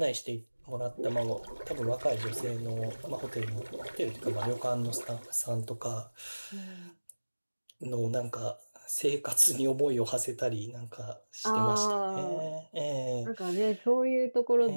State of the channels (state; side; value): inverted; both; correlation -1.00